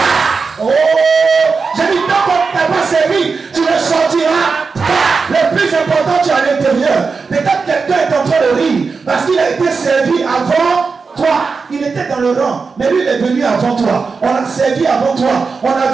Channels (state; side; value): quieter; left; 4.8 dB